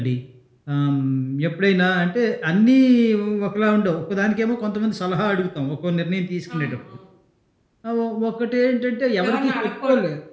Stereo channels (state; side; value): identical; both; correlation 1.00